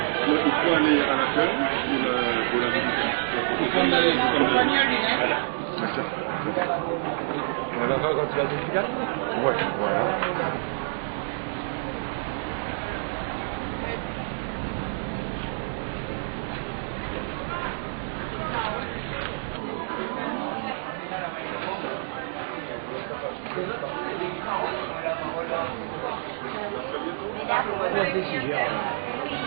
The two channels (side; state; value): left; silent; digital silence